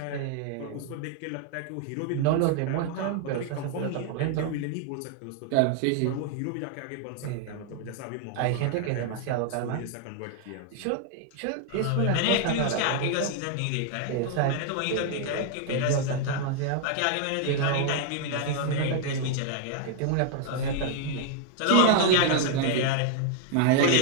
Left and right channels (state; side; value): different; both; correlation 0.00